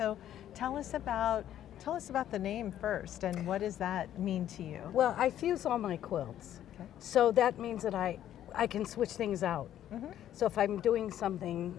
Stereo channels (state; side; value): quieter; right; 11.4 dB